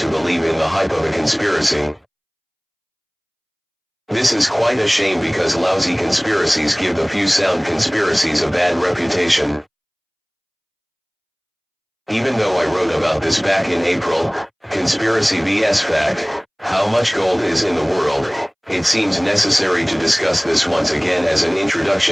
believe in the hype of a conspiracy. This is quite a shame because lousy conspiracies give the few sound conspiracies a bad reputation. Even though I wrote about this back in April, Conspiracy vs Fact, how much gold is in the world, it seems necessary to discuss this once again as an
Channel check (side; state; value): both; identical; correlation 1.00